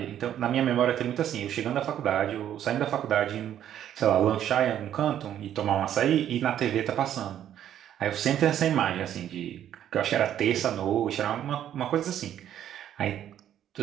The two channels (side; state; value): left; quieter; 10.7 dB